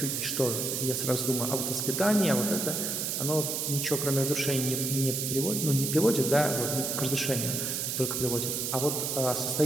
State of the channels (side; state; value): right; noise; hiss, 1 dB below the sound